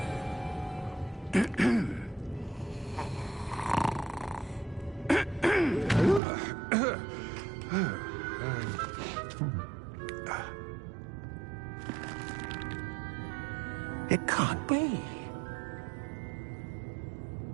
It can't be.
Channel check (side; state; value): left; drops out; at 6.2 s